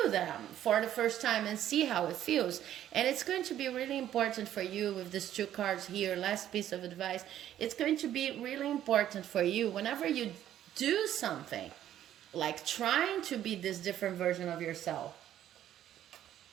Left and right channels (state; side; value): quieter; left; 11.6 dB